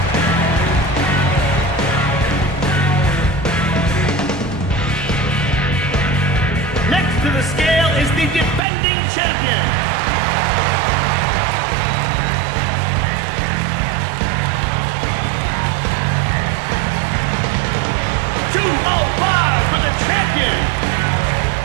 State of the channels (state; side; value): drops out; left; at 8.6 s